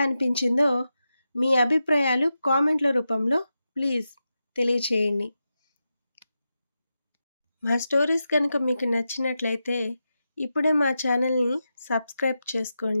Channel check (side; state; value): both; inverted; correlation -0.90